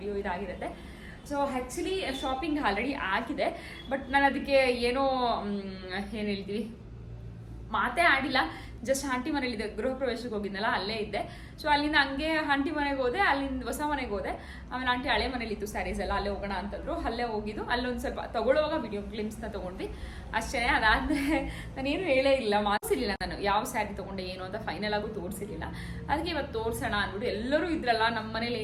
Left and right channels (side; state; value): both; identical; correlation 1.00